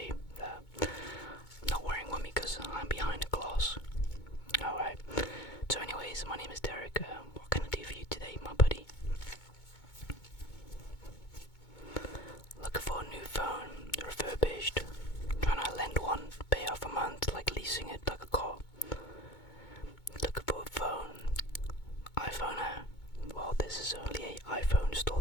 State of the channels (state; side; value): late; right; 2.2 ms